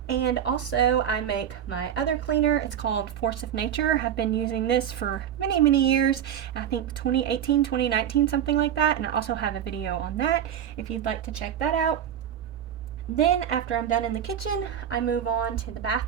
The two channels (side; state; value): left; quieter; 9.6 dB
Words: And also I make my other cleaner. It's called Force of Nature. I've been using this for many years. I think 2018, 2019, something like that. And I also have a video on that if you'd like to check that out. Then after I'm done in the kitchen, I move on to the